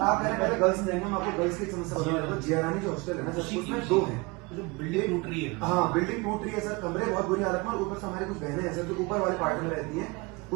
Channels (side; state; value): left; quieter; 26.0 dB